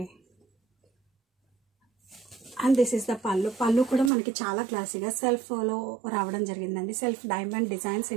అండ్ దిస్ ఈస్ ద పళ్ళు కూడా మనకి చాలా క్లాసీగా సెల్ఫ్లో రావడం జరిగిందండి. సెల్ఫ్ డైమండ్ డిజైన్స్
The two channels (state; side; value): drops out; left; at 4.1 s